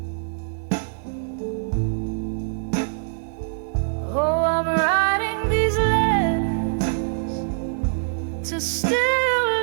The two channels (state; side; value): silent; left; digital silence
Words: Oh, I'm writing these letters to still